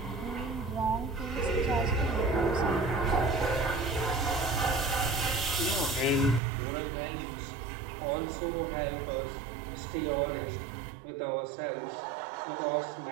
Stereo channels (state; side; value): drops out; left; at 6.4 s